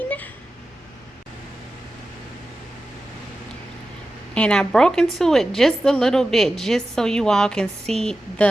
And I broke into it just a little bit just so you all can see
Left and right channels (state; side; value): normal; both; correlation 0.93